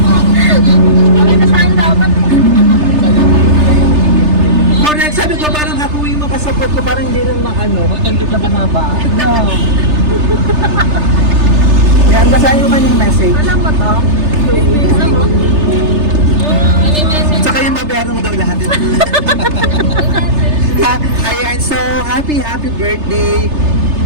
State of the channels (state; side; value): late; left; 3.3 ms